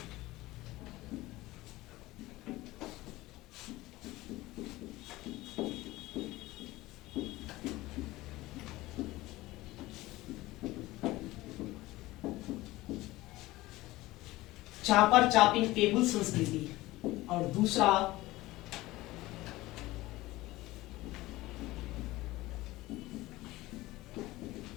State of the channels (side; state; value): right; quieter; 18.6 dB